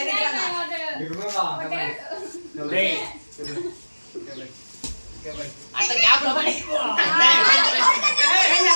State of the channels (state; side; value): inverted; both; correlation -1.00